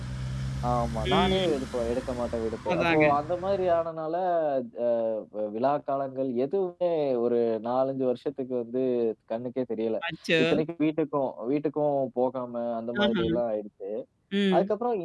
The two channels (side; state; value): both; identical; correlation 1.00